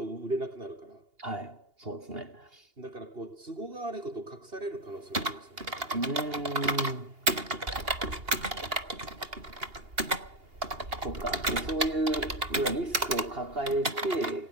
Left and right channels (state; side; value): late; left; 2.8 ms